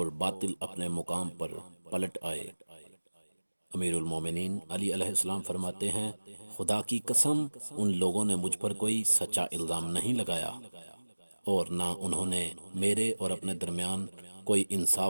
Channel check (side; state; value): both; inverted; correlation -1.00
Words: باطل اپنے مقام پر پلٹ آئے۔ امیر المومنین علی علیہ السلام فرماتے ہیں، خدا کی قسم ان لوگوں نے مجھ پر کوئی سچا الزام نہیں لگایا اور نہ انہوں نے میرے اور اپنے درمیان کوئی